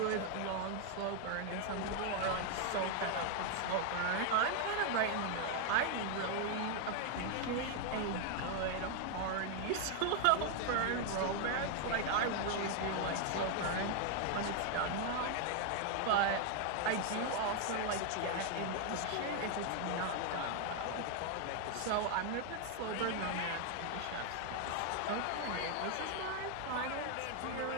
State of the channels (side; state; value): both; different; correlation 0.00